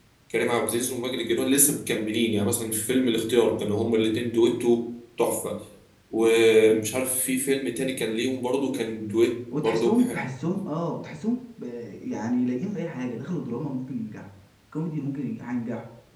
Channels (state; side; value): identical; both; correlation 1.00